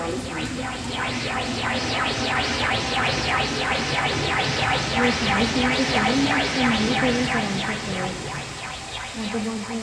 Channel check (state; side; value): identical; both; correlation 1.00